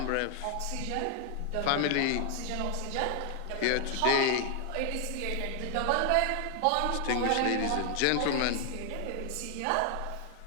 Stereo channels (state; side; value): different; both; correlation 0.00